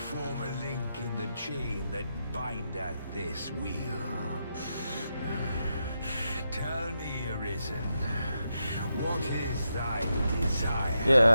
form a link in the chain that bindeth this wheel. Tell me, Arisen, what is thy desire?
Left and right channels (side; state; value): both; inverted; correlation -0.85